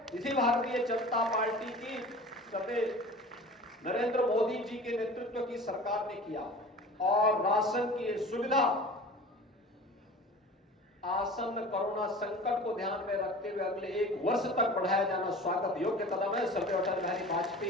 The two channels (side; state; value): both; normal; correlation 0.40